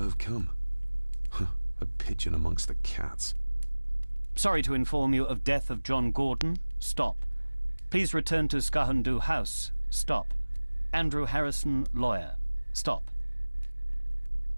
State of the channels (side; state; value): both; inverted; correlation -1.00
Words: come. A pigeon amongst the cats. Sorry to inform you of death of John Gordon. Stop. Please return to Skahundu House. Stop. Andrew Harrison, lawyer. Stop.